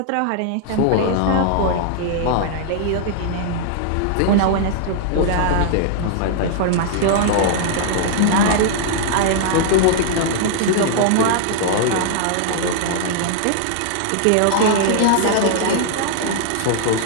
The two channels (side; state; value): both; different; correlation -0.01